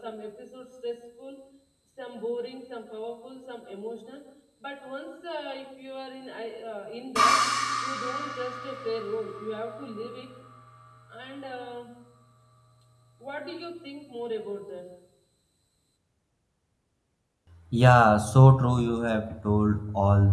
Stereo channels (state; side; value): identical; both; correlation 1.00